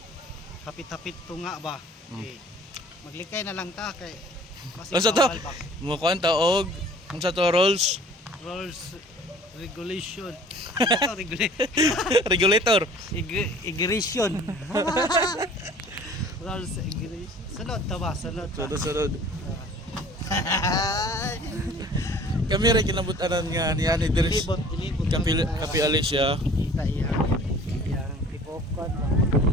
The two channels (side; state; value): both; normal; correlation 0.49